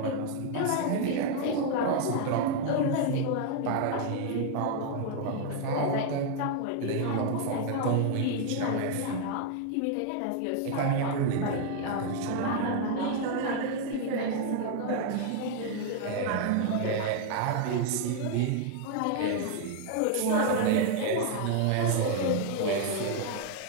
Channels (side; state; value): both; different; correlation 0.00